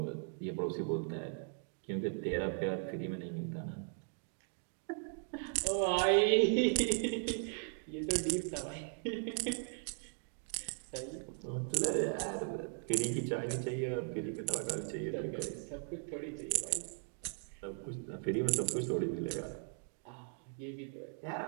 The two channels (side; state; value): left; silent; 52 dB below the other